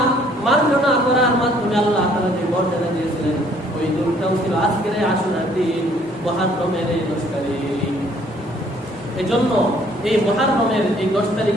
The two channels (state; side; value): normal; both; correlation 0.61